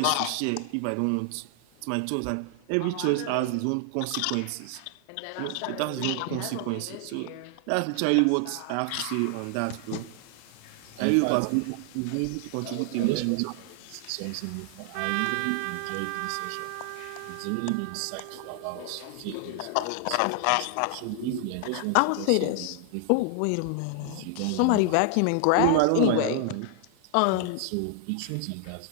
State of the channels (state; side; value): different; both; correlation 0.00